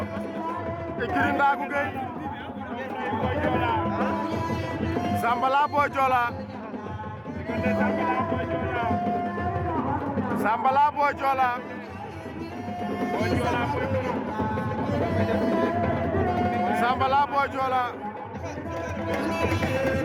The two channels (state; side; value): identical; both; correlation 1.00